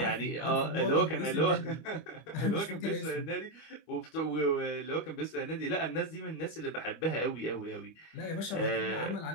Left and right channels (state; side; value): late; right; 25 ms